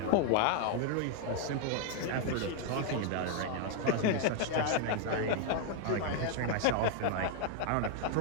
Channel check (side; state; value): both; different; correlation 0.00